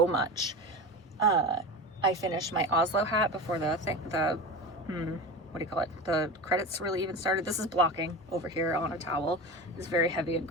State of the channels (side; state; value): both; normal; correlation 0.28